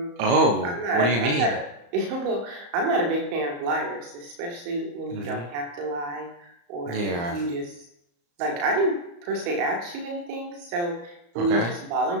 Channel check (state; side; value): late; left; 35 ms